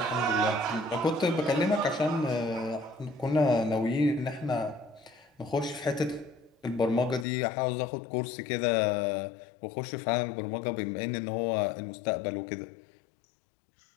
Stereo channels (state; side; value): drops out; right; at 7.2 s